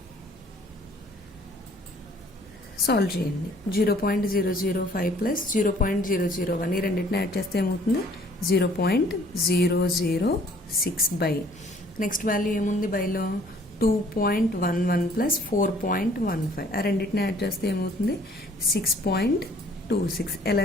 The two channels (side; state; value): both; normal; correlation 0.58